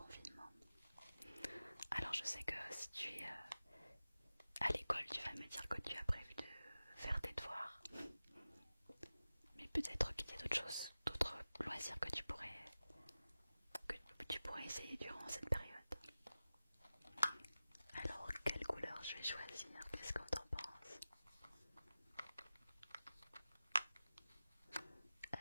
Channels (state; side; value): inverted; both; correlation -0.95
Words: Alors je sais que si tu es à l'école, tu vas me dire que tu as prévu de faire tes devoirs, mais peut-être qu'il y a d'autres choses, d'autres loisirs que tu pourrais essayer durant cette période. Alors quelle couleur je vais choisir? Qu'est-ce qu'on t'en pense?